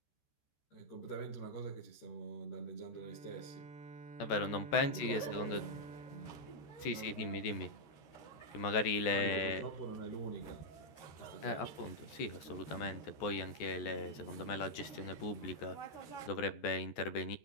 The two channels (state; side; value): late; right; 13 ms